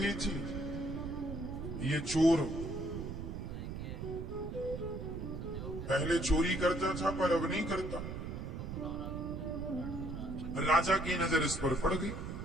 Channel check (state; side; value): noise; right; rumble, 6 dB below the sound